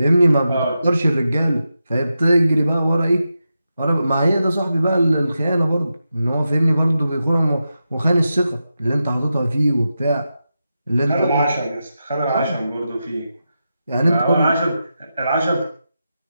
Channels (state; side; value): inverted; both; correlation -0.89